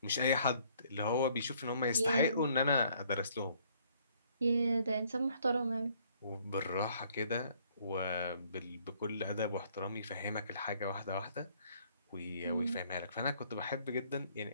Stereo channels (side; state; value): both; inverted; correlation -0.63